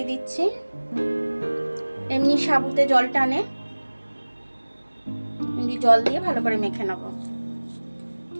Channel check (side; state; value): both; inverted; correlation -1.00